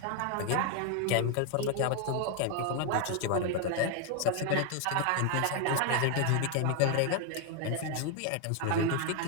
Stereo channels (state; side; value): different; both; correlation 0.01